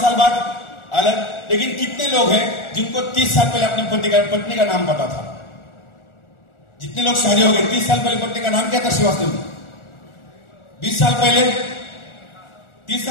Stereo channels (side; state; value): right; late; 1.4 ms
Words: साल बाद अलग। लेकिन कितने लोग हैं जिनको 30 साल पहले अपनी पत्नी का नाम पता था? जितने लोग शादी हो गए, 30 साल पहले पत्नी का नाम क्या था? श्रीवास्तव। 20 साल पहले, 30